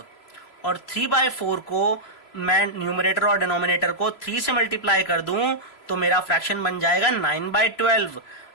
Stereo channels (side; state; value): right; late; 3.0 ms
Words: और 3/4 को मैं न्यूमरेटर और डिनोमिनेटर को 3 से मल्टीप्लाई कर दूं तो मेरा फ्रैक्शन बन जाएगा 9/12।